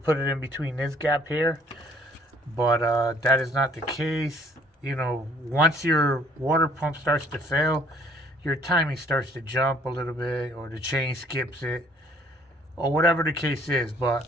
it in between this gap here, but that is not the case. Once your water pump starts to fail, your timing starts to jump a little bit, or the chain skips it, or whatever the case is. But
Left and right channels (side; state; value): both; normal; correlation 0.60